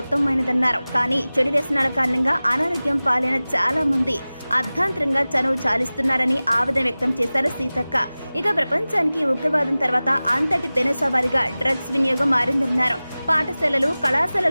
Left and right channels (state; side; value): inverted; both; correlation -0.98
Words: ఉత్తమమైనదన్నారు. కానీ చెడు వ్యసనాల కారణంగా అనారోగ్యం పాలైన చాలా మంది అర్ధాంతరంగా చనువు చాలిస్తున్నారని ఆవేదన వ్యక్తం చేశారు సీతక్క. ఇక ప్రపంచానికి ఉగ్రవాదం తర్వాత అంతటి పెనుసవారిగా డ్రగ్స్ వినియోగం మారిందన్నారు. పాఠశాలలు